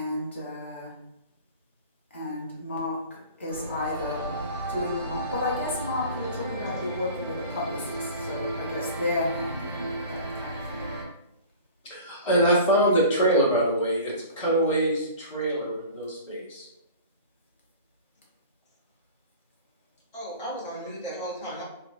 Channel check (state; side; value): inverted; both; correlation -0.40